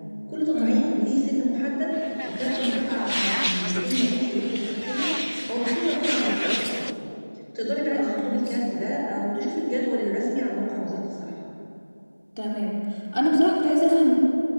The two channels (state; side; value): inverted; both; correlation -1.00